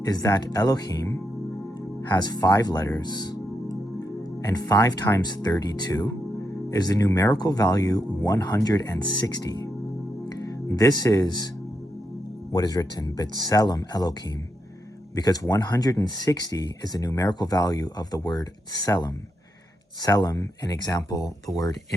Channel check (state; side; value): normal; both; correlation 0.83